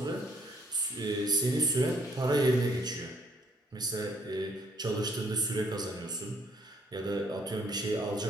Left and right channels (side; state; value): both; normal; correlation 0.65